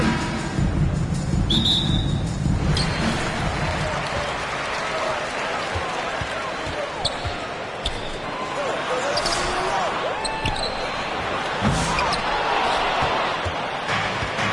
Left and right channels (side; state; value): both; identical; correlation 1.00